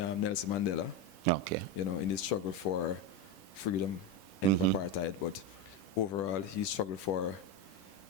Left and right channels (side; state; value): right; late; 10 ms